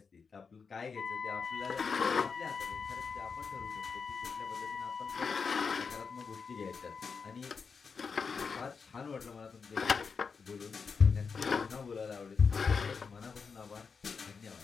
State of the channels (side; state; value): right; quieter; 5.4 dB